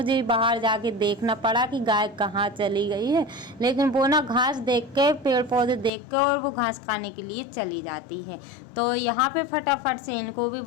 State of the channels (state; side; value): drops out; right; at 5.9 s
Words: बाहर जाके देखना पड़ा कि गाय कहाँ चली गई है, लेकिन वो ना घास देख के, पेड़ पौधे देख के और वो घास खाने के लिए चली जाती है। तो यहाँ पे फटाफट से इनको भी